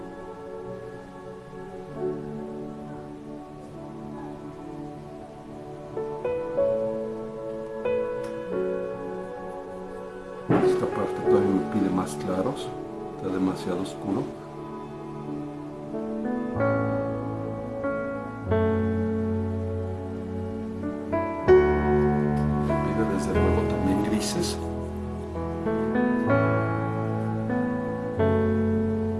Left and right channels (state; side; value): identical; both; correlation 1.00